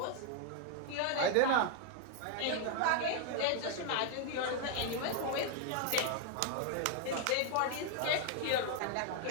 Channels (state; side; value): different; both; correlation 0.00